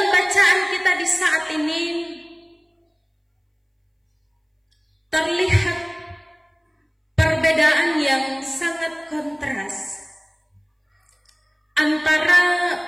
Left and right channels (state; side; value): identical; both; correlation 1.00